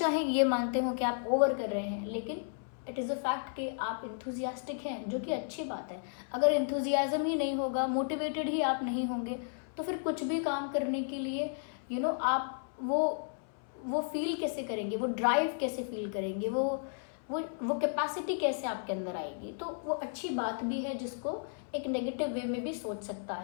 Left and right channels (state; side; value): silent; right; 55 dB below the other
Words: ये मानते हो कि आप ओवर कर रहे हैं, लेकिन इट इज़ अ फैक्ट कि आप इंथुजियास्टिक हैं, जो कि अच्छी बात है। अगर इंथुजियाज्म ही नहीं होगा, मोटिवेटेड ही आप नहीं होंगे, तो फिर कुछ भी काम करने के लिए आप वो फील कैसे करेंगे, वो ड्राइव कैसे फील करेंगे, वो वो कैपेसिटी कैसे आपके अंदर आएगी। तो वो अच्छी बात भी है जिसको एक नेगेटिव वे में भी सोच सकता